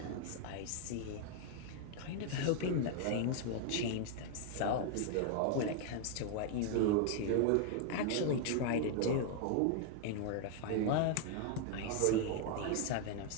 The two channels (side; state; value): both; different; correlation 0.00